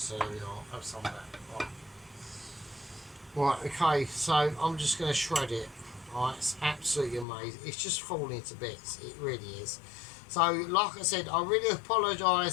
there we are. Have some of that. Right, okay, so I'm just going to shred it. Right, it's absolutely amazing. It's just falling to bits. It really is. So, like I said, I really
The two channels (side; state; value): right; drops out; at 7.2 s